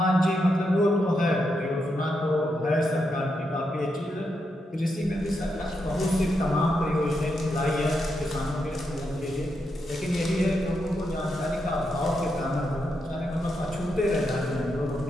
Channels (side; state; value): both; normal; correlation 0.83